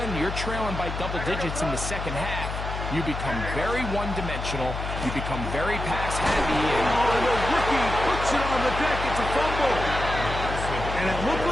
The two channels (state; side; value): noise; left; hum, 5 dB below the sound